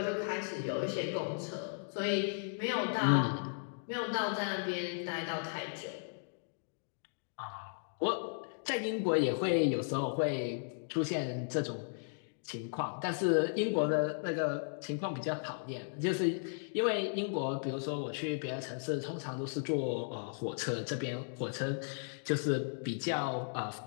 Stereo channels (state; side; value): silent; right; digital silence